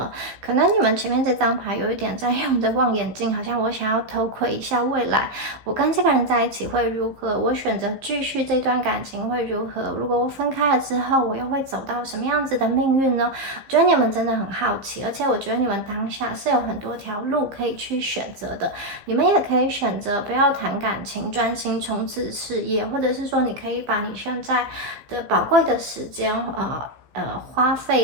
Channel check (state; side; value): late; left; 15 ms